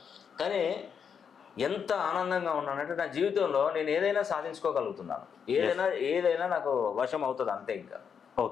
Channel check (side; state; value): right; quieter; 7.0 dB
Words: కానీ ఎంత ఆనందంగా ఉన్నానంటే నా జీవితంలో నేను ఏదైనా సాధించుకోగలుగుతున్నాను. ఏదైనా నాకు వశం అవుతుంది, అంతే. ఇంకా